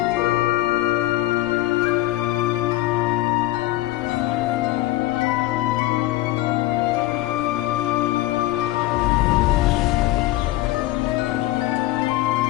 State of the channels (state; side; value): quieter; right; 17.2 dB